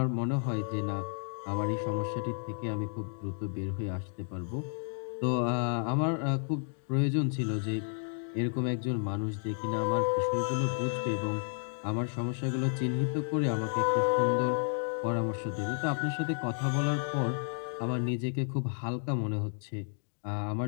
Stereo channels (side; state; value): right; silent; 57 dB below the other